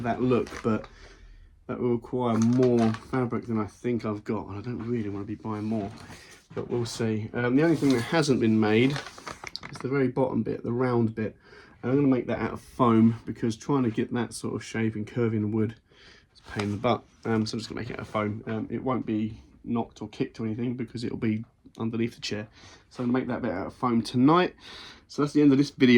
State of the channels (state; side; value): identical; both; correlation 1.00